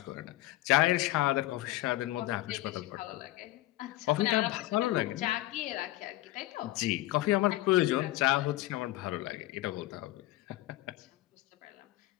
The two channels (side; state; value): right; quieter; 16.8 dB